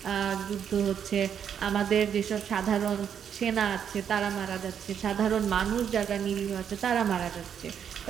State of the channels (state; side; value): quieter; left; 8.3 dB